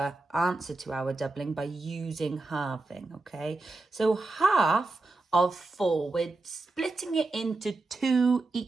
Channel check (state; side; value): quieter; left; 3.2 dB